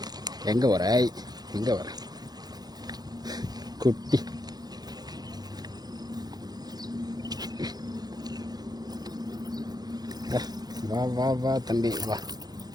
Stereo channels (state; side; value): late; left; 0.19 ms